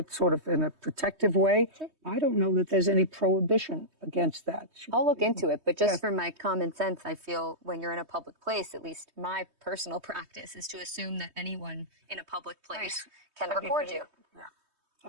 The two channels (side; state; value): left; late; 3.2 ms